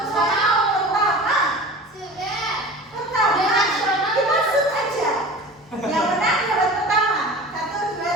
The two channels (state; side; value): normal; both; correlation 0.37